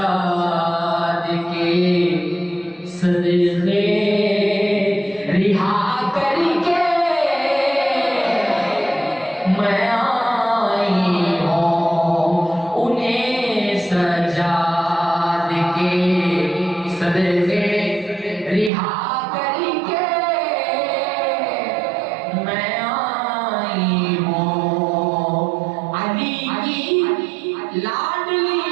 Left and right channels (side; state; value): left; drops out; at 18.7 s